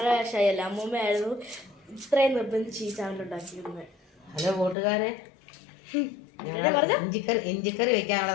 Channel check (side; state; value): right; drops out; at 4.8 s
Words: ഷൈ അല്ല, അമ്മൂമ്മയായിരുന്നു ഇത്രയും നിർബന്ധിച്ച് ഈ ചാനൽ ഉണ്ടാക്കിയിരുന്നത്. ഹലോ കൂട്ടുകാരെ, ഇഞ്ചിക്കറി വെക്കാനുള്ള